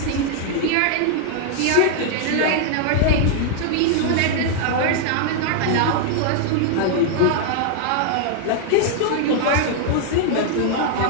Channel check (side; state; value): both; different; correlation 0.00